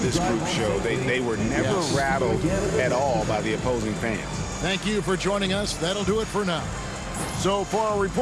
group showed? They were never rattled at all by the opposing fans. Thank you for joining us. That'll do it for now. So for our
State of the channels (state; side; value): identical; both; correlation 1.00